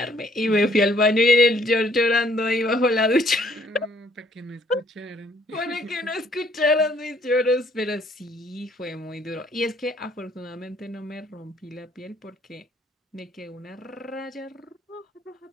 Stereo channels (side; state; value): both; normal; correlation 0.63